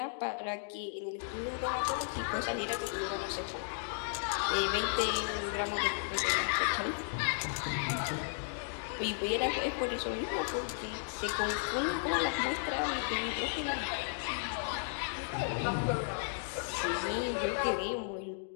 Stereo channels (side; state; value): right; silent; digital silence